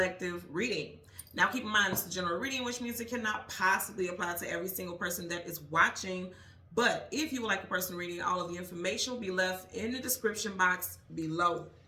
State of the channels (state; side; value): identical; both; correlation 1.00